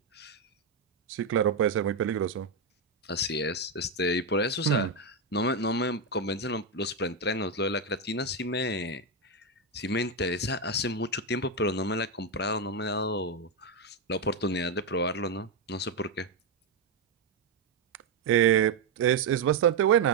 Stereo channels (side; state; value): left; quieter; 3.7 dB